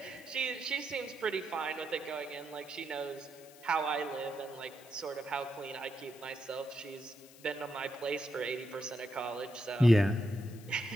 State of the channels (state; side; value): noise; left; hiss, 21 dB below the sound